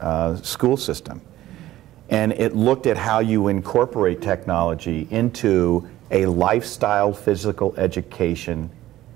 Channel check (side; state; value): left; quieter; 14.8 dB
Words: school system. And it looked at how you incorporate technology into a lifestyle physical education